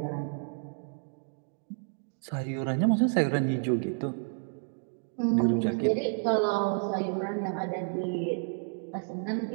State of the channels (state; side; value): silent; left; 57 dB below the other